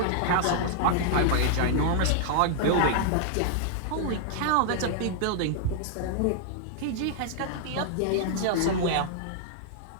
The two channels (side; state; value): both; different; correlation -0.01